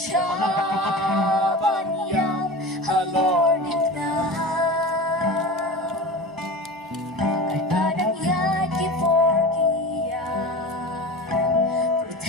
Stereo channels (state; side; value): normal; both; correlation 0.31